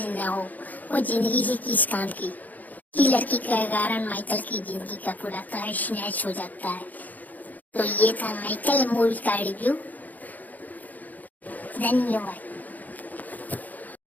न हो वो जिंदगी से किस काम की। ये लड़की के कारण माइकल की जिंदगी का पूरा तहस नहस हो जाता है। तो ये था माइकल मूवी का रिव्यू। धन्यवाद।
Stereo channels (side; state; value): right; late; 0.081 ms